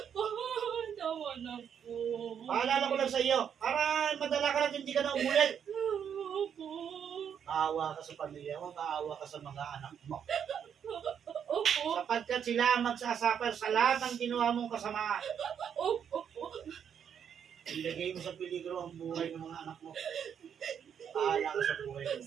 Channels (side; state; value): left; quieter; 8.1 dB